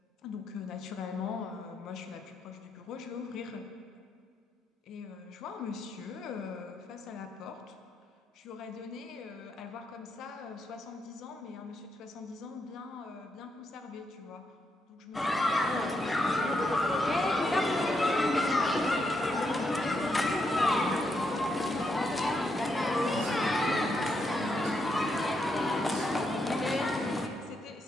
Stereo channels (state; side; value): normal; both; correlation 0.80